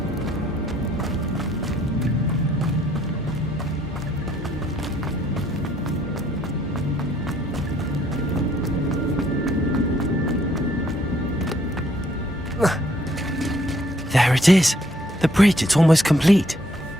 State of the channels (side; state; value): both; normal; correlation 0.66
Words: There it is. The bridge, it's almost complete.